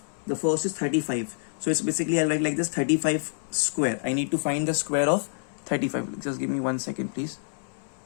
The first is 35. So it's basically I'll write like this, 35 square. I need to find the square of 35. Just give me 1 second please.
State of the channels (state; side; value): silent; right; 60 dB below the other